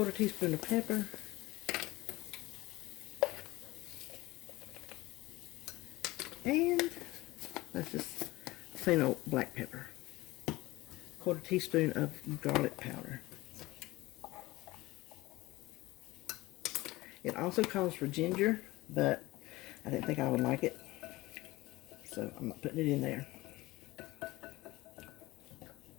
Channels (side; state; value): right; quieter; 19.7 dB